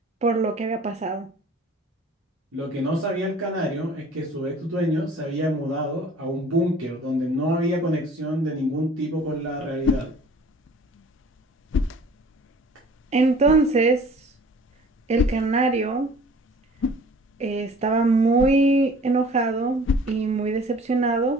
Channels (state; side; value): normal; both; correlation 0.49